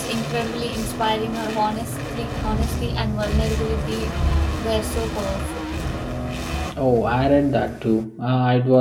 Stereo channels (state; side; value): identical; both; correlation 1.00